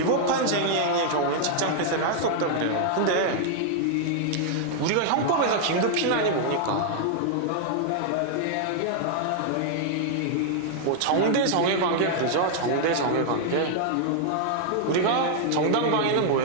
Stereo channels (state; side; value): different; both; correlation -0.01